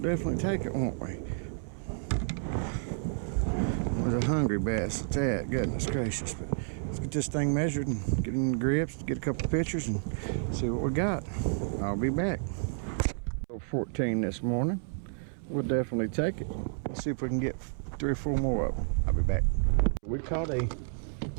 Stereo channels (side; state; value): left; silent; 57 dB below the other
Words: take it, won't we? It was a hungry bass at that. Goodness gracious. But let's get this thing measured and get in the grips, get a couple pictures and see what we got. I'll be back. 14 this morning. We'll definitely take it. Let's see if we can get 3 or 4 more of them. I'll be back. We caught a